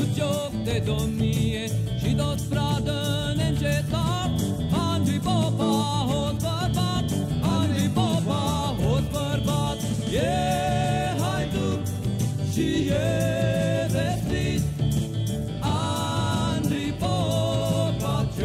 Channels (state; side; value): identical; both; correlation 1.00